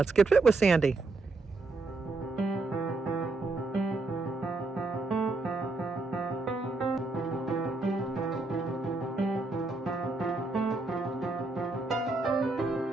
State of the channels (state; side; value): quieter; left; 3.4 dB